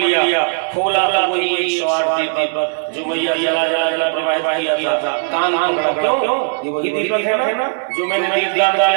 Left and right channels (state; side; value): silent; left; digital silence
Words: खोला तो वही एक सवार दीपक जो मैया जला जला जला प्रवाहित किया था। कान क्यों? ये वही दीपक है ना जो मैंने दीपदान